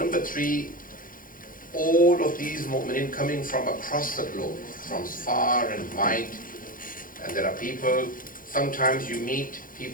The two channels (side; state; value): right; late; 0.40 ms